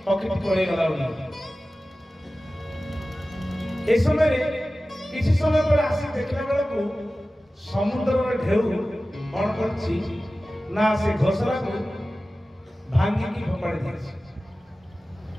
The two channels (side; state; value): both; normal; correlation 0.96